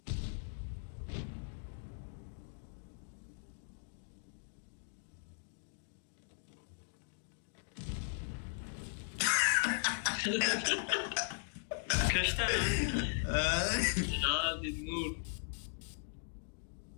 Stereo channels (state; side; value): silent; right; digital silence